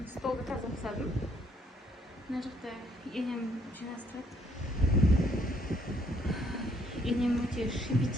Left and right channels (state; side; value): normal; both; correlation 0.67